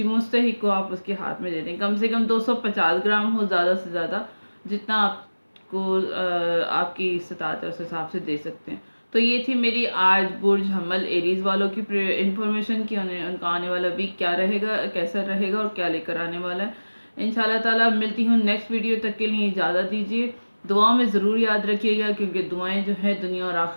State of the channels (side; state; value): both; inverted; correlation -1.00